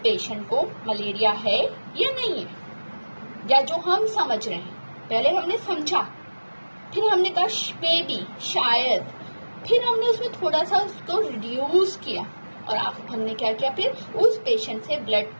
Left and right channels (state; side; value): inverted; both; correlation -1.00